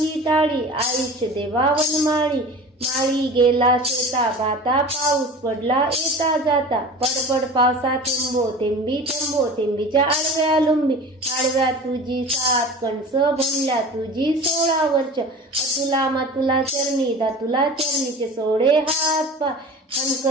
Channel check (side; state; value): both; normal; correlation 0.38